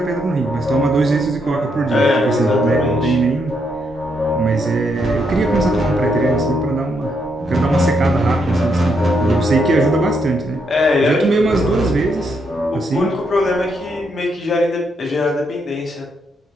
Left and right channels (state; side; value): normal; both; correlation 0.78